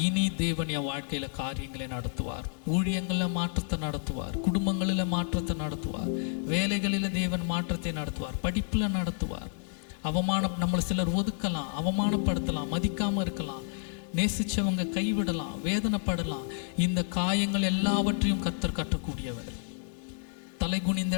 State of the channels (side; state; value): right; silent; 57 dB below the other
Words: இனி தேவன் என் வாழ்க்கையில் காரியங்களை நடத்துவார். ஊழியங்களில் மாற்றத்தை நடத்துவார், குடும்பங்களில் மாற்றத்தை நடத்துவார், வேலைகளில் தேவன் மாற்றத்தை நடத்துவார், படிப்பில் நடத்துவார். நம்மளை சிலர் ஒதுக்கலாம், அவமானப்படுத்தலாம், மதிக்காமல் இருக்கலாம், நேசித்தவங்க கைவிடலாம், வேதனைப்படலாம். இந்த காயங்கள் எல்லாவற்றையும் கர்த்தர் கட்டக்கூடியவர். தலை குனிந்த